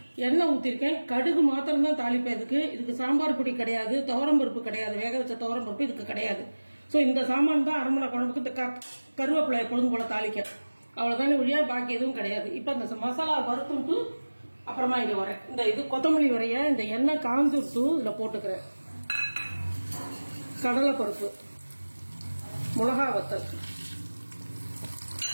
எண்ணெய் ஊத்திருக்கேன். கடுகு மாத்திரம் தான் தாளிப்பேன். இதுக்கு சாம்பார் பொடி கிடையாது, துவரம்பருப்பு கிடையாது, வேக வச்ச துவரம்பருப்பு இதுக்கு கிடையாது. சோ இந்த சாமான் தான் அரமணை குழம்புக்கு. இந்த கருவேப்பிலை எப்பொழுதும் போல தாளிக்க, அவ்வளவுதானே ஒழியா, பாக்கி எதுவும் கிடையாது. இப்ப இந்த மசாலா வறுத்துட்டு அப்புறமா இங்க வரேன். இது கொத்தமல்லி வரைய இந்த எண்ணெய் காஞ்சுட்டு இதுல போட்டுக்கிறேன். கடலைப்பருப்பு, மிளகா வத்தல்,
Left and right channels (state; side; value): inverted; both; correlation -1.00